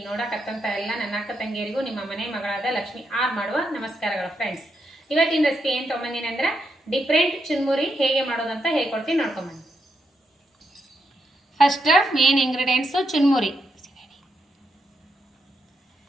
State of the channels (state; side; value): normal; both; correlation 0.81